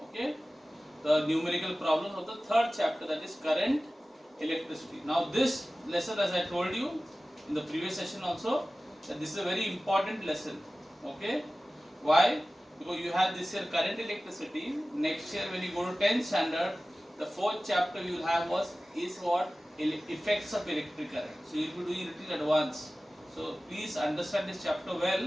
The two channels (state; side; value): normal; both; correlation 0.96